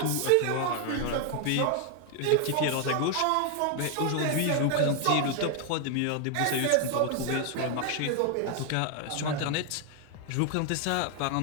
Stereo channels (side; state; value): both; different; correlation 0.00